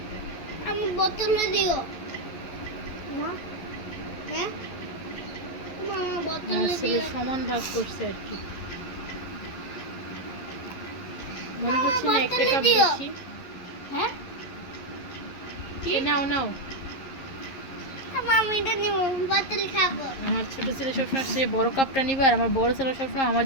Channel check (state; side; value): late; right; 11 ms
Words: আমি বোতলে দিও না, হ্যাঁ মামা বোতলে আমার ছেলে দিও। সমান ভাগ করছে আর কি, মনে হচ্ছে না একটা কাপ বেশি। হ্যাঁ নাও নাও। আমি এটা নিব, বোতল খাবো। আমার ছোট ছেলে সবসময় সে বড় কাপটা নিবে, আর আমার বড় ছেলে সবসময় আমার